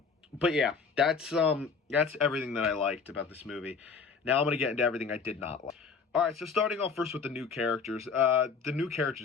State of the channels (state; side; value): quieter; right; 5.3 dB